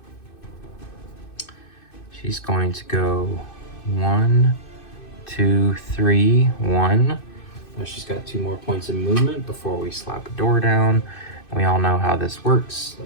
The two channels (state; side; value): late; right; 2.6 ms